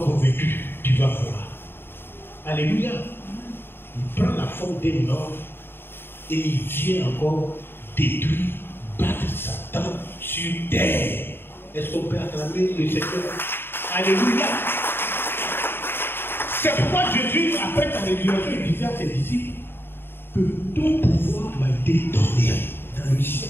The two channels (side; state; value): right; late; 0.11 ms